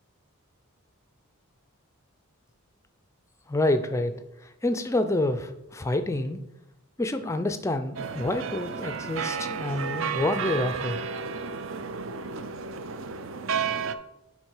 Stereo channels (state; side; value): normal; both; correlation 0.49